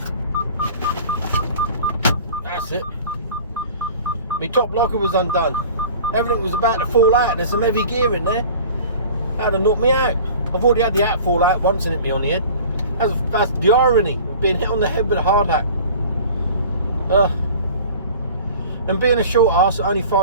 That's it. My top locker was undone. Everything was about to fall out. There's some heavy gear in there. That'd have knocked me out. I've already had the hat fall out once and hit me on the head. That's the irony of being hit on the head with a hard hat. And being a short ass at only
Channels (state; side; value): inverted; both; correlation -0.43